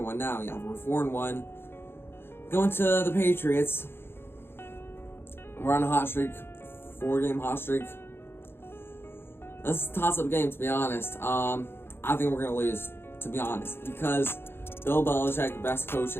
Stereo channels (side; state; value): right; late; 0.11 ms